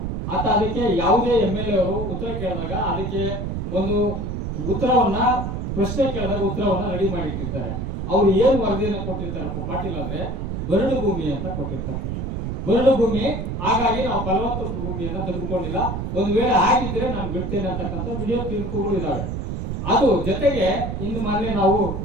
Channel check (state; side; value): noise; right; rumble, 3 dB below the sound